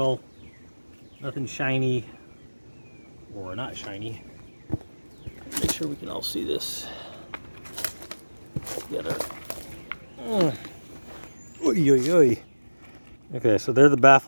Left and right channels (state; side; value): inverted; both; correlation -1.00